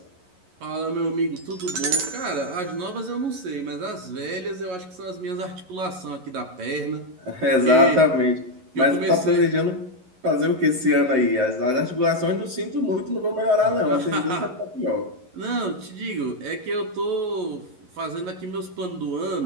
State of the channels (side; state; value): left; late; 11 ms